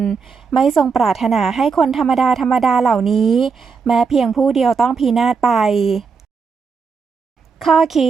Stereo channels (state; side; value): quieter; left; 5.4 dB